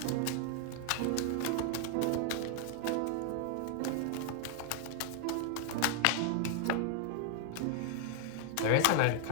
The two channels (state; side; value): different; both; correlation 0.00